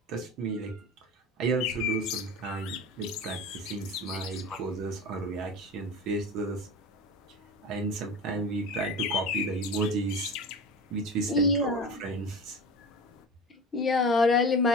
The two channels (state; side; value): normal; both; correlation 0.31